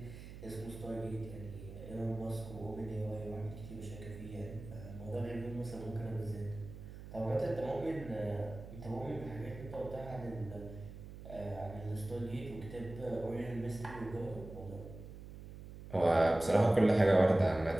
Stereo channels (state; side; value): noise; right; hum, 13 dB below the sound